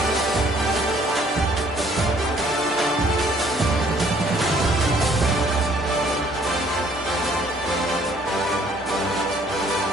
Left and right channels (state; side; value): normal; both; correlation 0.61